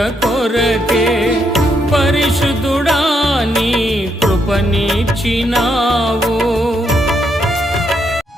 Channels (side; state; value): both; normal; correlation 0.77